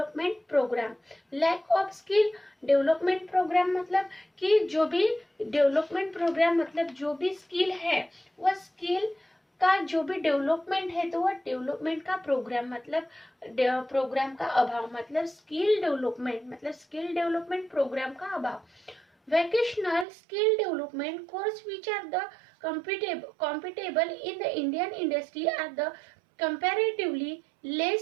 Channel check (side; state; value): left; drops out; at 20.1 s